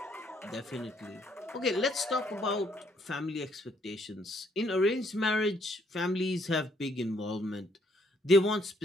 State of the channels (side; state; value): both; normal; correlation 0.69